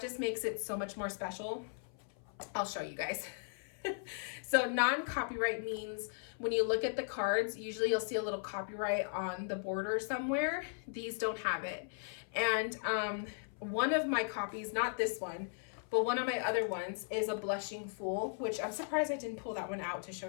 makes it so much more special. I'll show you guys. So non-copyright means when you look at the cards, usually you'll see a little copyright on the border somewhere. These don't have it. And one of my copies, not this one, but one of my other ones is a Blushing Fool, which I'm surprised I didn't pull that one out to show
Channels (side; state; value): right; silent; 53 dB below the other